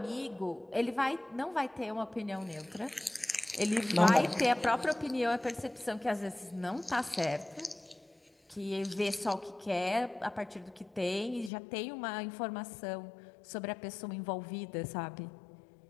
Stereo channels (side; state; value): right; drops out; at 11.5 s